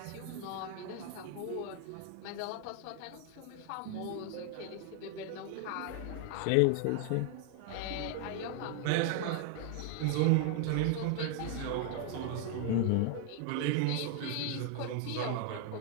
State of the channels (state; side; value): different; both; correlation 0.00